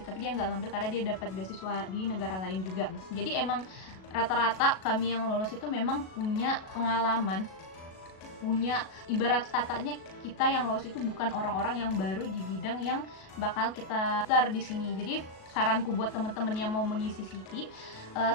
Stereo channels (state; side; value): late; right; 37 ms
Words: tapi dia nggak ngambil karena dia dapat beasiswa di negara lain juga. Jadi emang rata-rata kami yang lolos itu memang punya pengalaman, punya, ibarat katanya kita yang lolos itu bukan orang-orang yang baru di bidang yang bakal kita daftar di sini. Jadi saranku buat teman-teman yang mau mengisi CV,